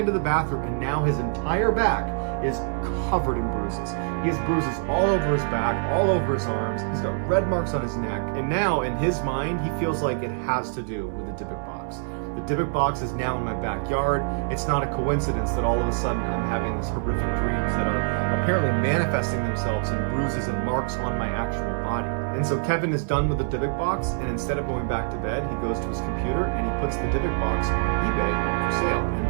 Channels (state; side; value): silent; left; digital silence